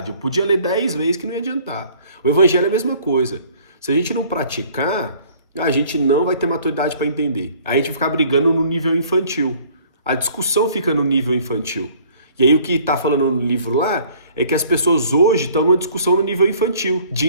Eu podia ler 10 vezes que não ia adiantar. O evangelho é a mesma coisa. Se a gente não praticar, a gente não vai ter maturidade para entender. Aí a gente vai ficar brigando no nível infantil. A discussão fica no nível infantil. E aí o que está falando no livro lá é que as pessoas hoje estão numa discussão no nível infantil, de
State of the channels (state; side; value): inverted; both; correlation -0.56